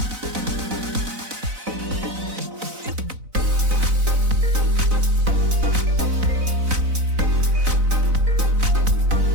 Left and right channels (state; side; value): late; left; 4.0 ms